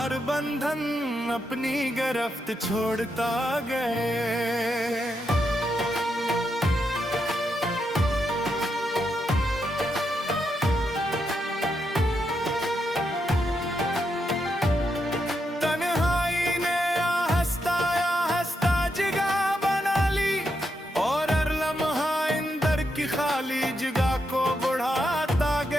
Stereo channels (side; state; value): both; normal; correlation 0.82